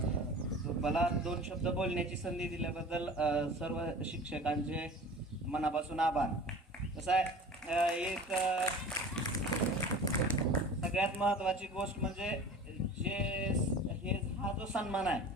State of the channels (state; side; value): normal; both; correlation 0.39